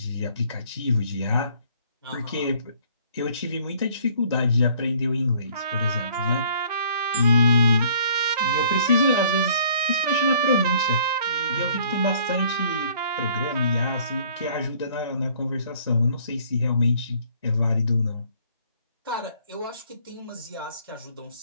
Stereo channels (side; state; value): both; inverted; correlation -0.58